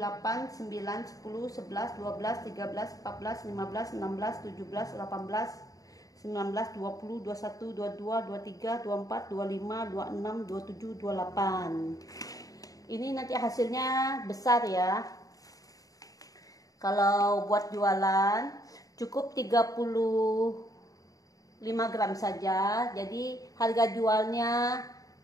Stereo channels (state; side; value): late; right; 0.17 ms